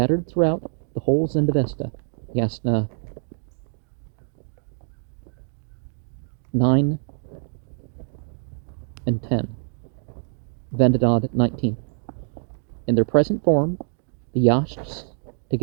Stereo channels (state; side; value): silent; left; digital silence